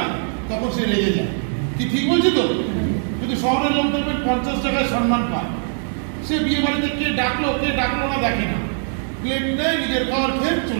তখন সে লেগে যায়। কি ঠিক বলছি তো? কিন্তু শহরের লোক দেখবেন 50 টাকায় সম্মান পায়। সে বিয়ে বাড়িতে কে ডাকলো না দেখে না, প্লেট নেয়, নিজের খাওয়ার খেয়ে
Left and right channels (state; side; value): silent; left; 65 dB below the other